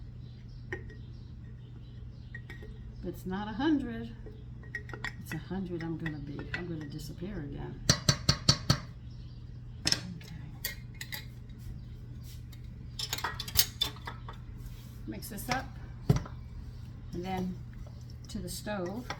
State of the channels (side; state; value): both; identical; correlation 1.00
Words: But it's not 100. It's 100 I'm gonna be. I'm gonna disappear again. Okay. Mix this up. And then to the stove